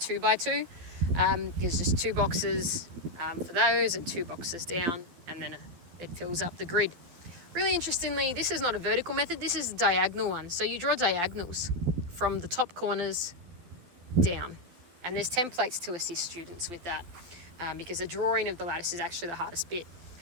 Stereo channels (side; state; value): left; late; 12 ms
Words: There's just 2 boxes for those and 2 boxes down, and then it fills up the grid. Really interestingly, this is not a vertical method, this is a diagonal one. So you draw diagonals from the top corners down. And there's templates to assist students with that, because the drawing of the lattice is actually the hardest bit.